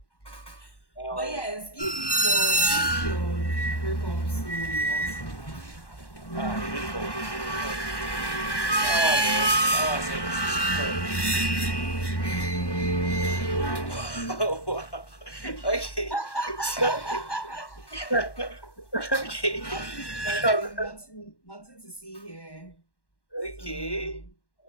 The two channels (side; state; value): right; late; 1.1 ms